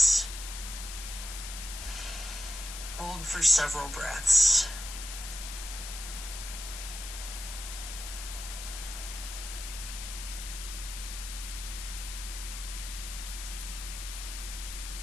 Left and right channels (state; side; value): noise; left; hiss, 8 dB below the sound